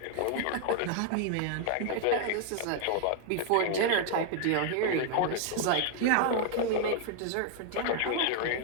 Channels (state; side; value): different; both; correlation 0.00